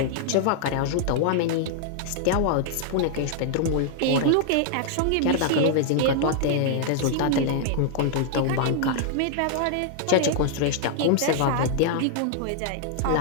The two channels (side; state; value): both; different; correlation 0.00